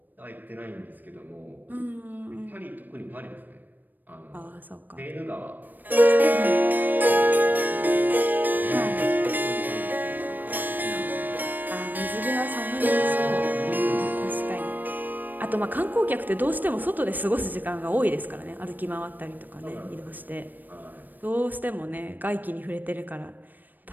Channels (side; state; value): left; late; 0.089 ms